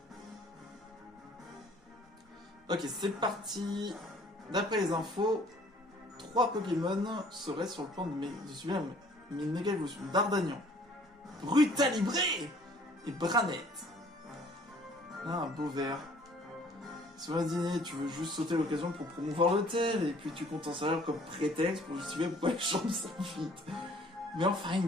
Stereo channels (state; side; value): normal; both; correlation 0.56